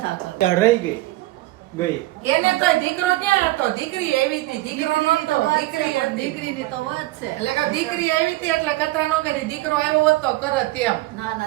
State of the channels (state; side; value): quieter; left; 18.4 dB